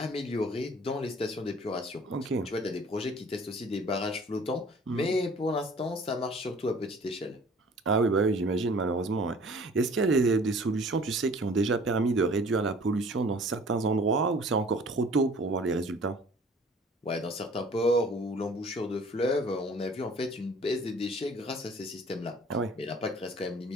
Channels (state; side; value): normal; both; correlation 0.50